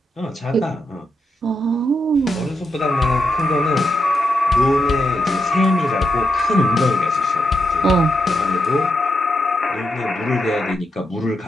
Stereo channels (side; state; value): both; normal; correlation 0.84